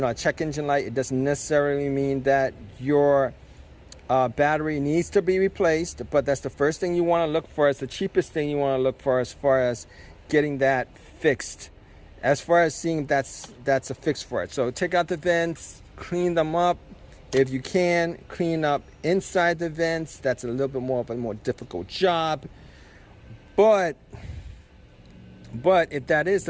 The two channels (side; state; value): both; identical; correlation 1.00